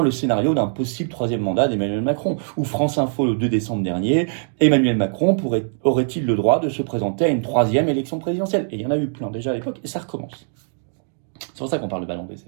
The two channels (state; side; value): silent; left; digital silence